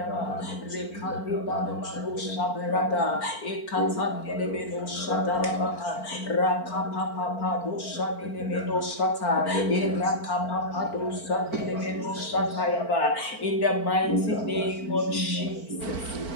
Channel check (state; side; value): late; right; 4.4 ms